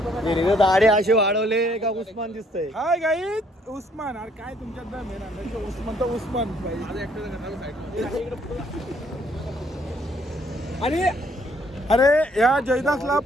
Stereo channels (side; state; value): both; normal; correlation 0.65